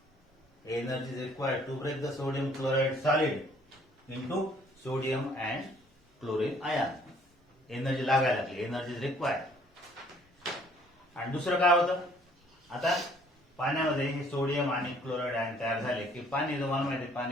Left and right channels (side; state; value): both; normal; correlation 0.60